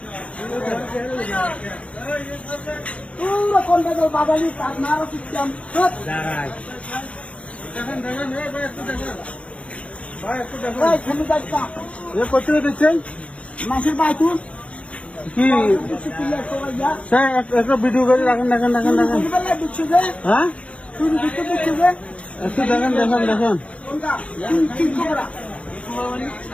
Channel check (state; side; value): late; right; 0.063 ms